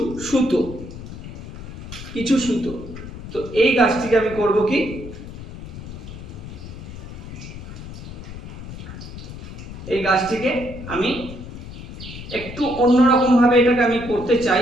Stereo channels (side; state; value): left; noise; rumble, 11 dB below the sound